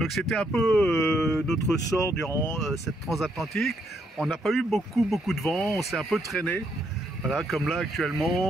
c'était un peu notre sort durant cette transatlantique. On n'a pas eu beaucoup de vent. On s'est un peu traîné. Voilà, comme là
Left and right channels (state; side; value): normal; both; correlation 0.74